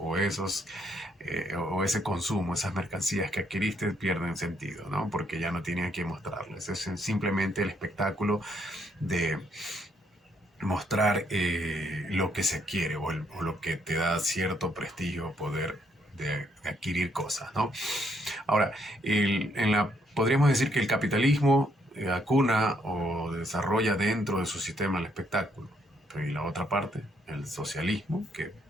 ese consumo, esas mercancías que adquiriste pierden sentido, ¿no? Porque ya no tienen a quién mostrarles. Es simplemente el espectáculo de mostrar lo que se quiere, o lo que te da cierto prestigio, poder de adquirir cosas, ¿no? Ahora, podríamos decir que el capitalismo acuna o desarrolla dentro de su sistema el espectáculo. Y la otra parte, el socialismo, que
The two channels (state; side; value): normal; both; correlation 0.72